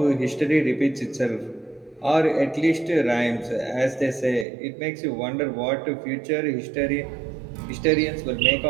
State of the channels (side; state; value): left; drops out; at 4.5 s